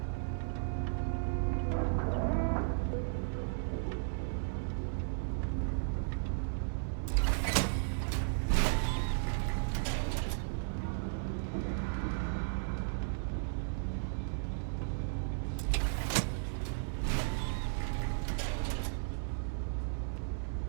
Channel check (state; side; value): silent; left; 54 dB below the other